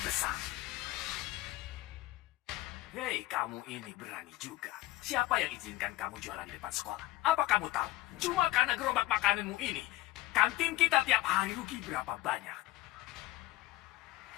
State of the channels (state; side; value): quieter; right; 17.5 dB